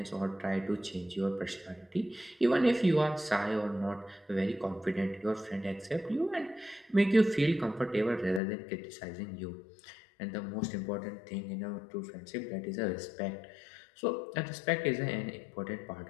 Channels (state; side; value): drops out; right; at 8.4 s